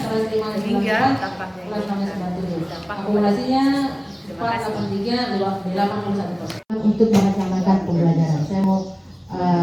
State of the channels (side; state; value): both; identical; correlation 1.00